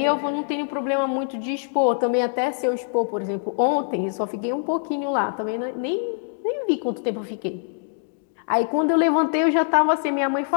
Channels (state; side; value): silent; right; digital silence